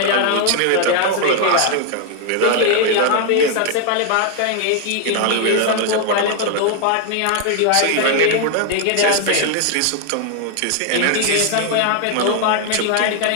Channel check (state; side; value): different; both; correlation 0.00